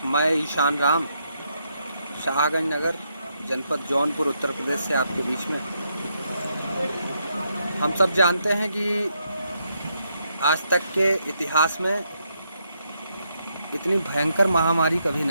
मैं ईशान राम शाहगंज नगर जनपद जौनपुर उत्तर प्रदेश से आपके बीच में। हम सब जानते हैं कि आज तक के इतिहास में इतनी भयंकर महामारी कभी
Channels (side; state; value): both; inverted; correlation -0.78